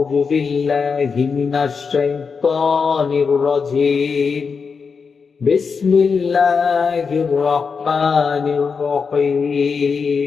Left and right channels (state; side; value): quieter; right; 5.4 dB